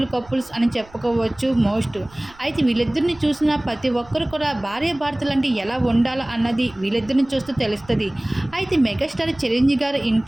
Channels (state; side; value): noise; right; rumble, 24 dB below the sound